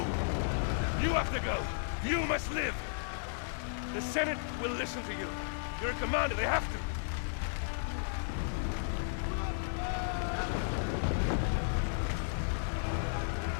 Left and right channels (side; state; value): right; silent; digital silence